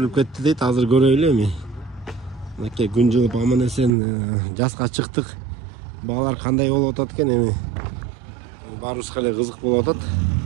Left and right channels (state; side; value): drops out; left; at 3.9 s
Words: кетти дейт, азыр көрөйлү эми. Мынакей күн жылып аман эсен жазга чыктык. Багалар кандай болуп атат экен эми. Баарыбызга эле кызык болуп атат.